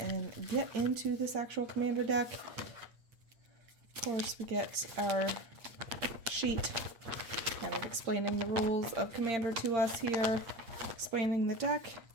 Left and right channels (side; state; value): left; late; 8.8 ms